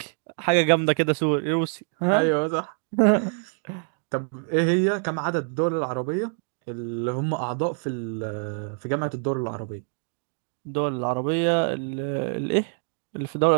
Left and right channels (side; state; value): left; silent; digital silence